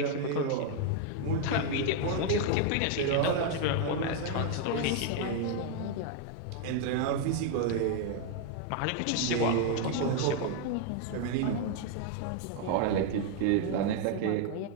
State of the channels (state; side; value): different; both; correlation 0.00